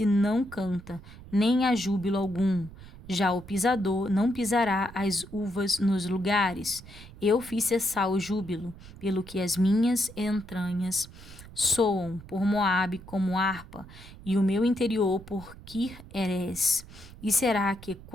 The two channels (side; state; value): right; noise; rumble, 18 dB below the sound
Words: não canta, nem há júbilo algum. Já o pisador não pisará as uvas nos lugares. Eu fiz cessar o júbilo, pelo que as minhas entranhas soam por Moabe como harpa, e o meu interior por Kir-Erés. E será que